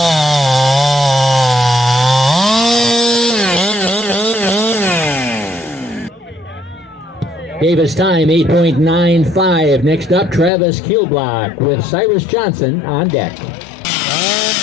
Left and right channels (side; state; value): right; drops out; at 10.5 s